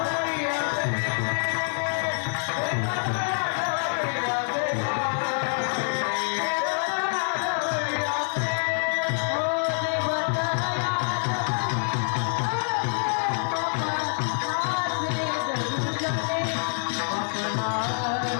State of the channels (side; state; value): right; silent; 61 dB below the other